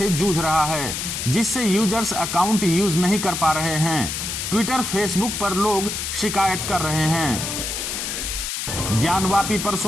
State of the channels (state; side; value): noise; left; hiss, 4 dB below the sound